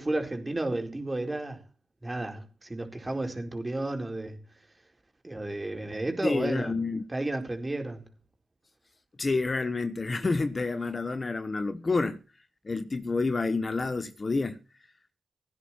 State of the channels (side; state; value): both; normal; correlation 0.95